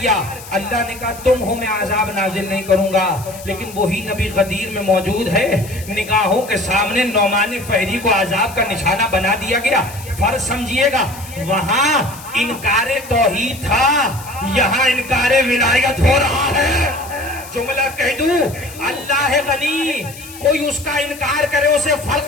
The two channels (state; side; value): noise; left; hiss, 16 dB below the sound